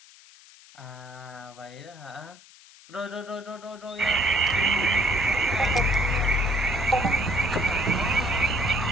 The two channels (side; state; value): left; noise; hiss, 23 dB below the sound